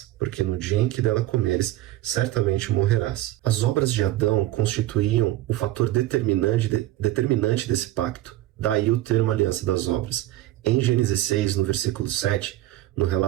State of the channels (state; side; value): quieter; left; 15.2 dB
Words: porque no dia em que dela comeres, certamente morrerás. As obras de Adão constituíam o fator determinante desse pacto. Daí o termo aliança das obras. Em Gênesis 6, no versículo 7, no